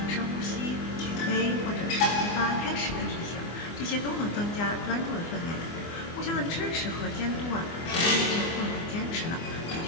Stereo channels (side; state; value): right; late; 24 ms